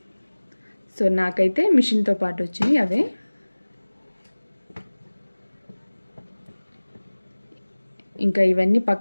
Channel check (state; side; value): inverted; both; correlation -1.00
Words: సో నాకైతే మిషన్తో పాటు వచ్చినాయి అవే. ఇంకా ఇవన్నీ